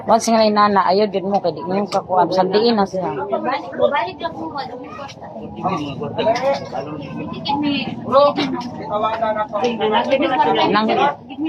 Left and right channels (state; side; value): identical; both; correlation 1.00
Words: Once nga nana, ayaw din mo, kaya di mo yung kakuha. Sandiin na siya. Balik lang mo, ano mo kwarta. Nang, Give me